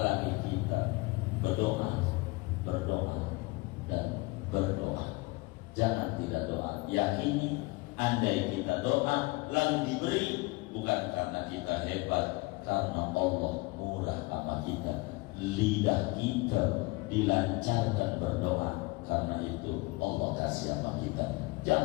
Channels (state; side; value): quieter; right; 24.1 dB